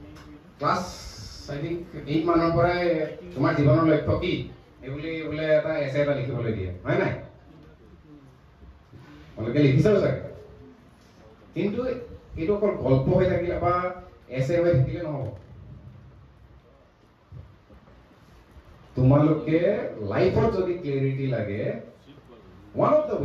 ক্লাছ আই থিংক 8 মানৰ পৰাই তোমাৰ জীৱনৰ লক্ষ্য কি এইবুলি বোলে এটা এছে এটা লিখিবলৈ দিয়ে, হয় নাই? আপোনালোকে লিখিছেও চাগে। কিন্তু এইটো অকল গল্প হৈ থাকিলে বা এছে হৈ থাকিলে নহ'ব। তোমালোকে লাইফত যদি ক্লিয়াৰিটি লাগে, ওৱান অফ দ্য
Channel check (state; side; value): identical; both; correlation 1.00